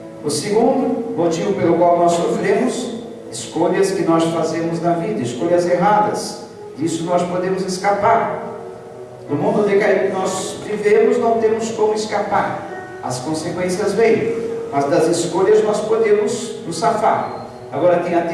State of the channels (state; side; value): identical; both; correlation 1.00